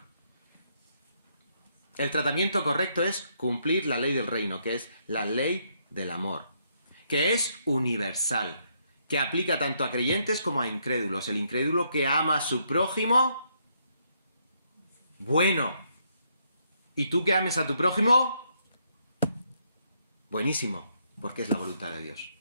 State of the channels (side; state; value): both; inverted; correlation -0.74